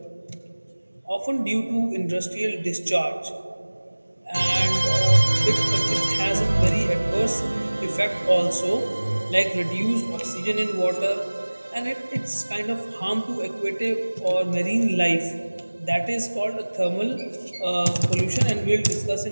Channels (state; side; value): inverted; both; correlation -1.00